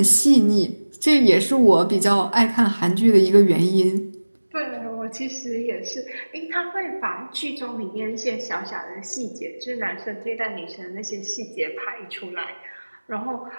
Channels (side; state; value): both; inverted; correlation -1.00